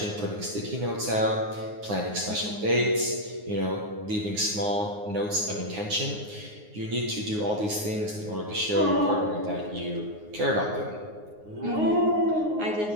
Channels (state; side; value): late; left; 9.6 ms